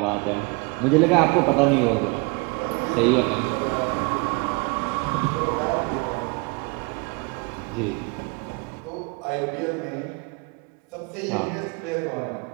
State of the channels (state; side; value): quieter; left; 30.0 dB